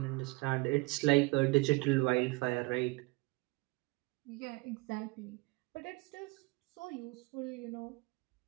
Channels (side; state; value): left; quieter; 25.6 dB